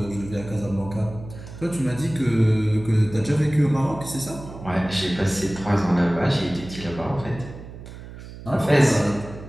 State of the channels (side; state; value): right; noise; hum, 14 dB below the sound